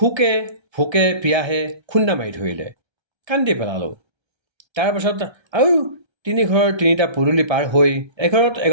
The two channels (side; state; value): left; late; 1.3 ms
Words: ভোকে পিয়াহে খুন্দা মাৰি ধৰিলে। কান্দি পেলালোঁ। তাৰ পাছত আৰু তিনি ঘৰৰ তিনিটা পদূলি পাৰ হৈ এঘৰত